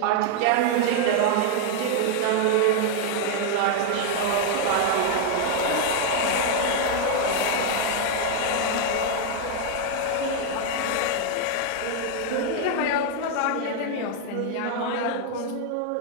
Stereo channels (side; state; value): both; different; correlation 0.00